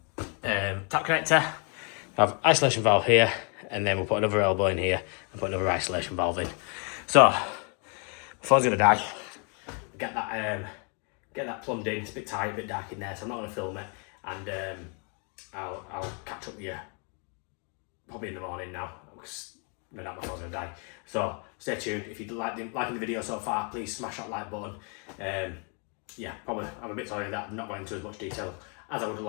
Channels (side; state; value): right; quieter; 37.6 dB